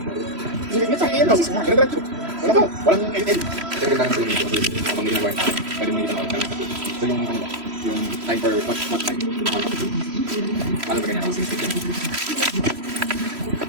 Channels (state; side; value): late; left; 3.1 ms